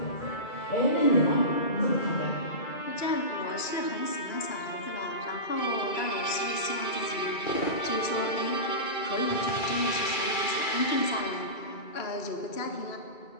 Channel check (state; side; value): late; right; 2.3 ms